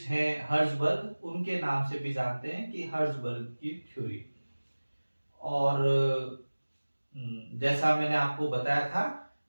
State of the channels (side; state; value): both; inverted; correlation -1.00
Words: हैं हर्ट्जबर्ग उनके नाम से भी जानते हैं कि हर्ट्जबर्ग की थ्योरी। और जैसा मैंने आपको बताया था